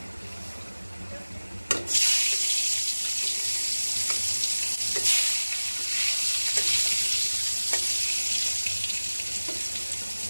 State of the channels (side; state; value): both; inverted; correlation -1.00